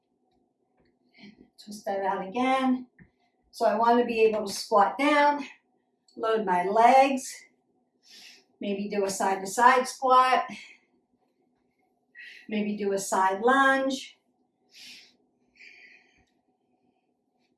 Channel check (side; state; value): both; identical; correlation 1.00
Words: Twist that out again. So I want to be able to squat down, load my legs, maybe do a side to side squat, maybe do a side lunge,